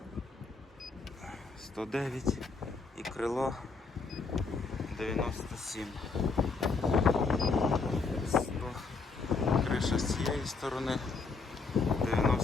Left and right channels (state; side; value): quieter; right; 4.3 dB